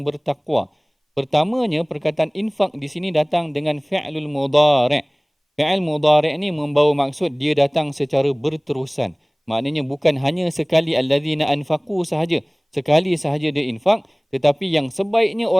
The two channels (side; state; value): both; identical; correlation 1.00